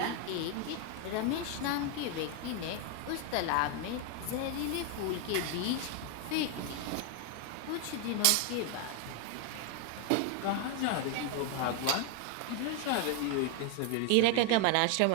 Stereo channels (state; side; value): different; both; correlation 0.00